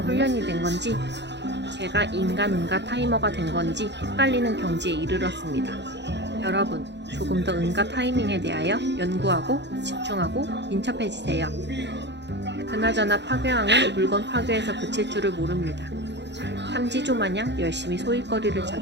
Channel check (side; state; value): left; late; 0.51 ms